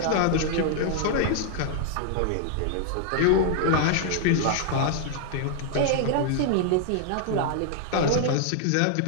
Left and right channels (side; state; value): both; different; correlation 0.00